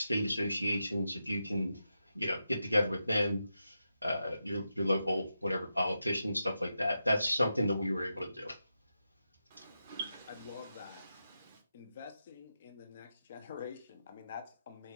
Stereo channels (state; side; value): inverted; both; correlation -0.88